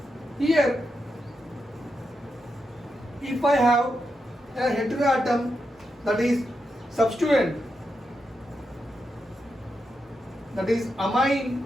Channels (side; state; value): both; normal; correlation 0.86